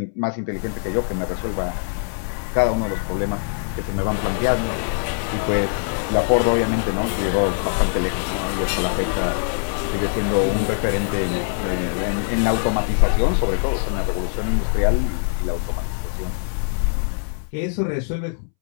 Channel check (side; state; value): right; silent; 64 dB below the other